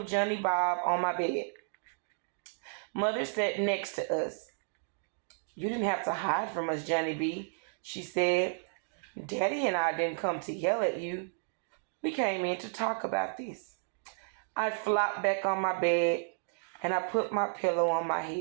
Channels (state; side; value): silent; left; digital silence